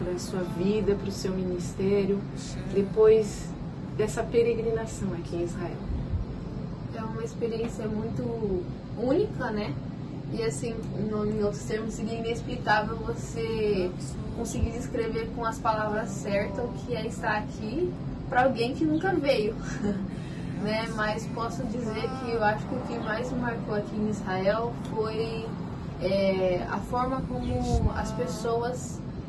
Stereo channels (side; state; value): both; identical; correlation 1.00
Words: a sua vida, para o seu ministério, depois dessa peregrinação aqui em Israel? É uma experiência muito única, né? E assim, em outros termos, seria inexplicável você conseguir descrever com as palavras certas o que é estar aqui para alguém que nunca veio, né? Mas posso dizer que eu acho que o que mais me marcou aqui em Israel foi a forma como as pessoas